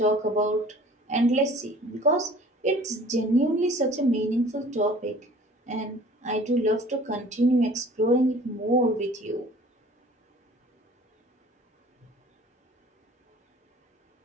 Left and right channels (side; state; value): both; normal; correlation 0.49